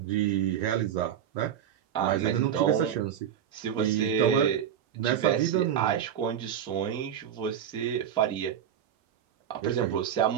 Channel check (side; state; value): left; quieter; 9.4 dB